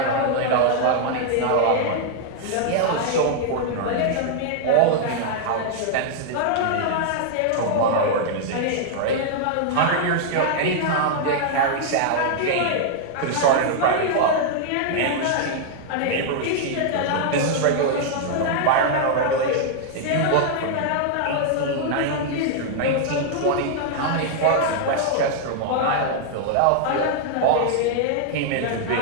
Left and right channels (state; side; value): different; both; correlation -0.01